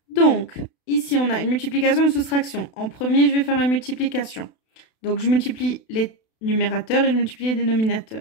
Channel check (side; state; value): right; late; 32 ms